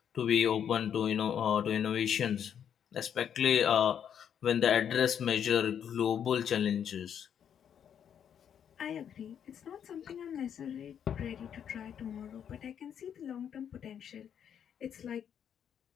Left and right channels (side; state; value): right; quieter; 8.6 dB